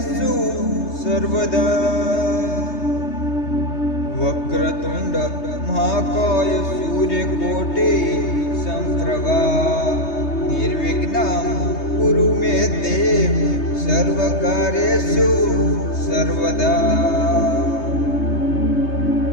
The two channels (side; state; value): right; late; 3.2 ms